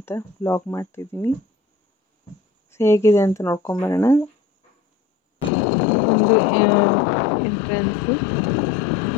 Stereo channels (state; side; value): drops out; right; at 5.5 s